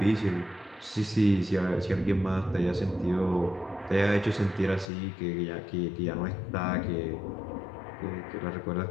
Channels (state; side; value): drops out; right; at 4.9 s